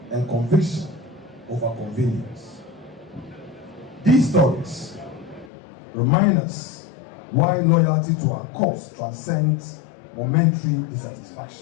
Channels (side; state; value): right; drops out; at 5.5 s